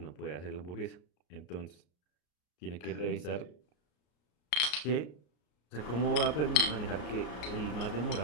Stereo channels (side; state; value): right; late; 33 ms